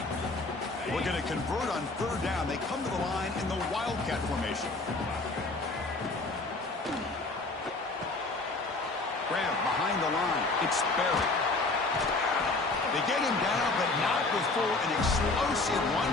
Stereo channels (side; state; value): right; quieter; 3.3 dB